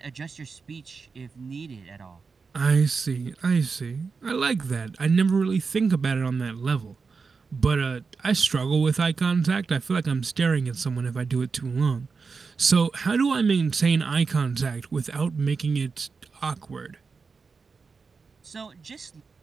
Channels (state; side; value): quieter; left; 4.9 dB